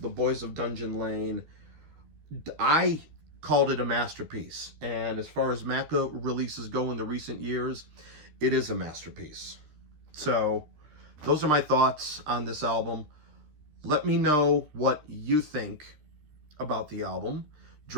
Boys of Dungeon Lane, I called it a masterpiece. And as far as Macca releases go in the recent years, it is a masterpiece. So, those are my thoughts on this album. Let me know what you think about the album.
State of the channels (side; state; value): left; late; 13 ms